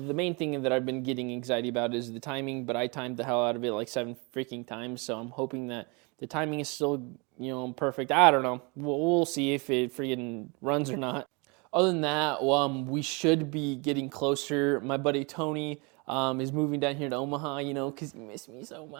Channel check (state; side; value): quieter; left; 30.2 dB